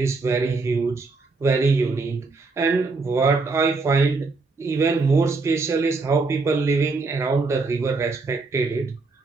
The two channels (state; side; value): quieter; left; 3.9 dB